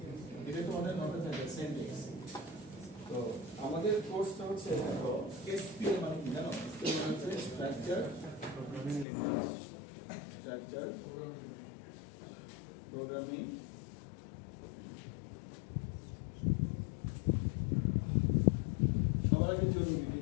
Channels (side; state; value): right; drops out; at 9.1 s